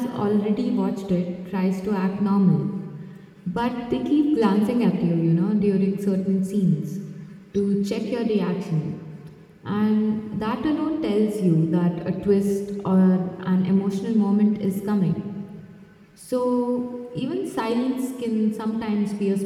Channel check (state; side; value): identical; both; correlation 1.00